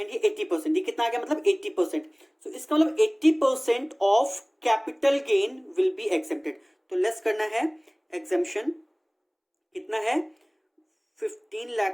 ये 80%, ये कितना आ गया, मतलब 80%। तो इसका मतलब 80% of capital gain will be accepted. तो लेस करना है, एग्जेम्पशन कितना है, 15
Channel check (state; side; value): identical; both; correlation 1.00